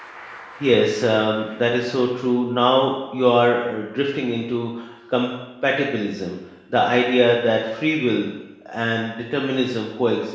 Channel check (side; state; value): both; identical; correlation 1.00